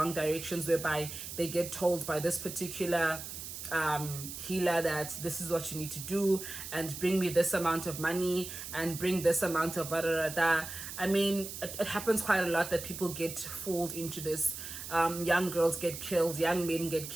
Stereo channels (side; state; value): right; noise; hiss, 9 dB below the sound